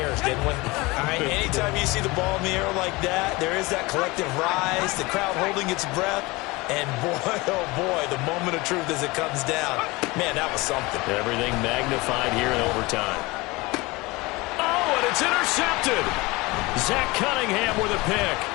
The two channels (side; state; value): right; quieter; 23.1 dB